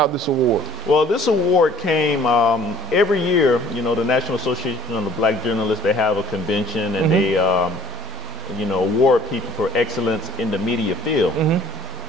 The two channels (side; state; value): both; normal; correlation 0.56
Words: this award. Well, this award came every year. The National Association of the Black Journalists, they have a convention, and they, award people for excellence in the media field.